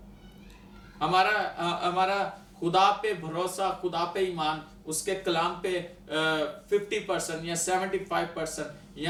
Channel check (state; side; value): identical; both; correlation 1.00